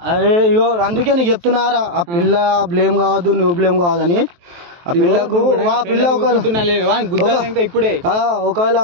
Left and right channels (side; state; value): left; late; 23 ms